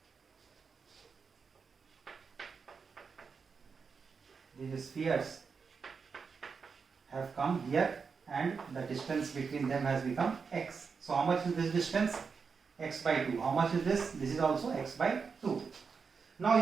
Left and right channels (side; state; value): left; quieter; 5.5 dB